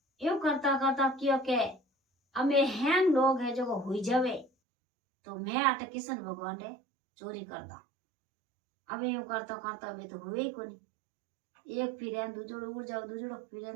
यूं करता करता क्यों के हमें हैं लोग है जो हुई जावे तो मैं आटे किशन भगवान ने चोरी कर दा। अब यूं करता करता वे तो हुए ही कोनी, एक फिर दूजोड़ो उड़ जाओ, दूजोड़ो फिर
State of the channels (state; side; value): drops out; left; at 4.5 s